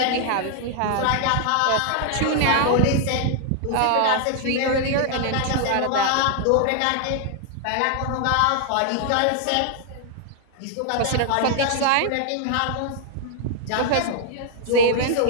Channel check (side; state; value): both; different; correlation 0.00